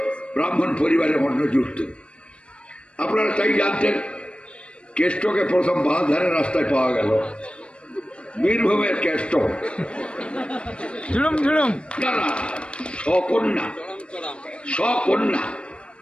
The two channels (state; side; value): late; right; 0.058 ms